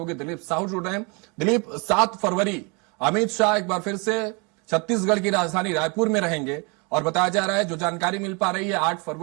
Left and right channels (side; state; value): left; quieter; 31.6 dB